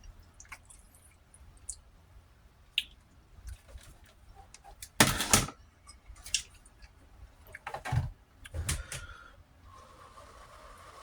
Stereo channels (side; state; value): both; identical; correlation 1.00